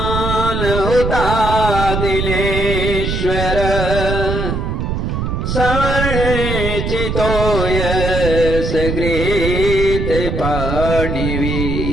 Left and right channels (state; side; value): noise; right; rumble, 2 dB below the sound